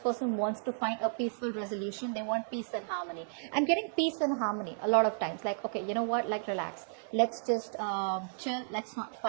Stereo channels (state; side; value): silent; left; 56 dB below the other